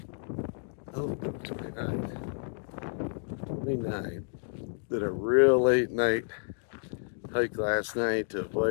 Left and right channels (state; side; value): silent; right; digital silence